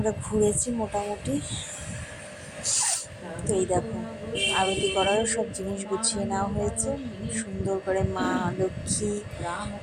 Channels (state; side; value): identical; both; correlation 1.00